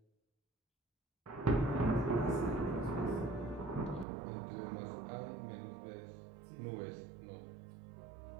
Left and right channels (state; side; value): drops out; left; at 4.0 s